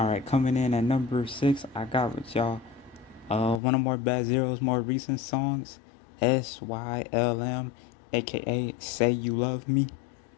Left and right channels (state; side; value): drops out; right; at 3.6 s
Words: right, coming in at number 6, I got with y'all one of more Bad Zero's more recent songs, SYLM, aka Say You Love Me.